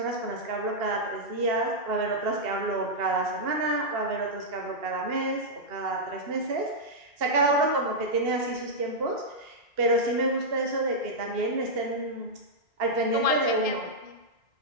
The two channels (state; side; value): late; left; 2.7 ms